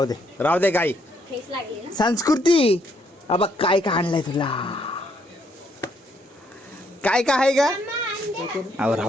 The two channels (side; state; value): both; normal; correlation 0.72